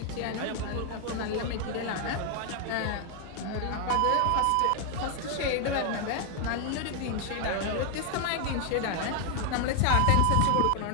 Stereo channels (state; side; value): different; both; correlation 0.00